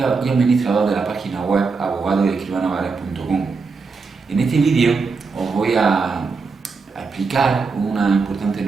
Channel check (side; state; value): left; quieter; 4.6 dB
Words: de la página web abogadoescribanovares.com. En este vídeo os voy a explicar una importante